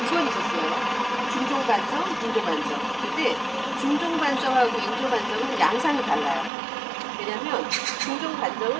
번 있었어요. 중종반정, 인조반정. 근데 중종반정하고 인조반정은 양상이 달라요. 왜냐면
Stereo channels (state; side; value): drops out; left; at 6.5 s